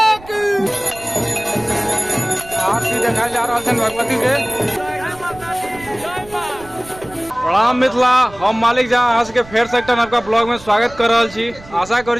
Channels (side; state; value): right; noise; rumble, 20 dB below the sound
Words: देखा जा रहा है भगवती के प्रणाम मिथिला। हम मालिक जहाँ अहाँ सबके फेर से एक नवका ब्लॉग में स्वागत कर रहा छी। आशा करी